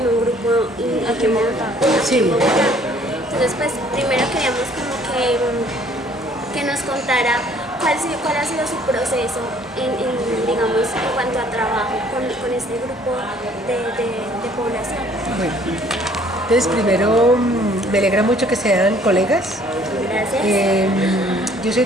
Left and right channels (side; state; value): both; normal; correlation 0.58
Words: un grupo aquí en Bogotá. Sí. Entonces, pues, primero queríamos como que nos contara cuál ha sido su proceso digamos, en cuanto a trabajo con este grupo de población. Bueno, entonces primero me alegra mucho que sean colegas. Gracias. Yo soy